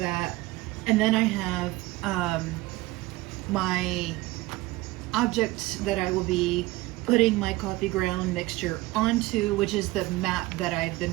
And then I have my object that I will be putting my coffee ground mixture onto, which is the map that I've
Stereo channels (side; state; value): left; quieter; 19.4 dB